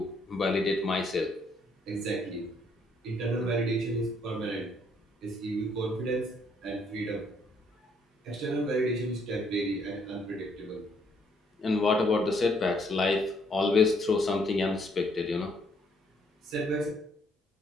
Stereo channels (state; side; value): normal; both; correlation 0.69